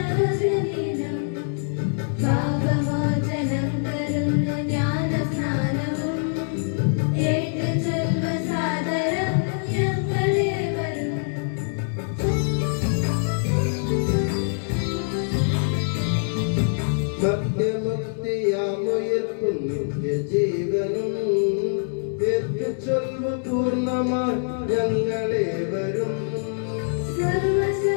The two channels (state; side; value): silent; right; 62 dB below the other